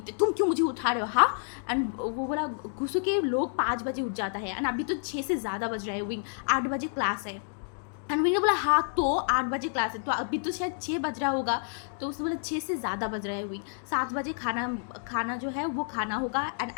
तुम क्यों मुझे उठा रहे हो हाँ। एंड वो बोला गुस्से के लोग 5 बजे उठ जाता है एंड अभी तो 6 से ज़्यादा बज रहा है, विंग 8 बजे क्लास है। एंड विंग ने बोला हाँ तो 8 बजे क्लास है तो अभी तो शायद 6 बज रहा होगा, तो उसने बोला 6 से ज़्यादा बज रहा है विंग, 7 बजे खाना जो है वो खाना होगा एंड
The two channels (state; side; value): silent; right; digital silence